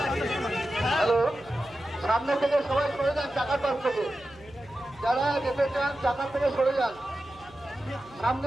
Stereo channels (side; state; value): left; noise; hum, 24 dB below the sound